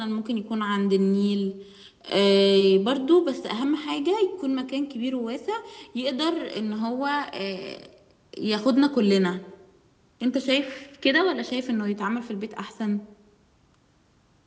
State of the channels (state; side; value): identical; both; correlation 1.00